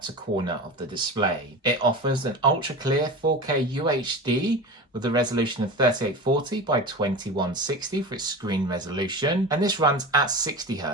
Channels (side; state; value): both; normal; correlation 0.29